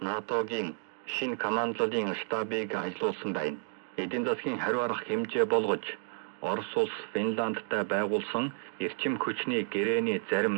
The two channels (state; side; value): silent; left; 57 dB below the other